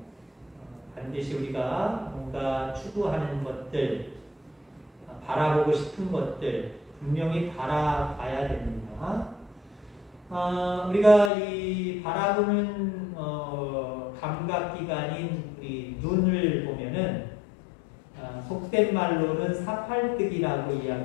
반드시 우리가 뭔가 추구하는 것들, 바라보고 싶은 것들 분명히 바라봐야 됩니다. 우리가 이 바라보는 감각기관인 우리 눈을 보면은 속된 말로는 사팔뜨기라고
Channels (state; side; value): drops out; right; at 11.3 s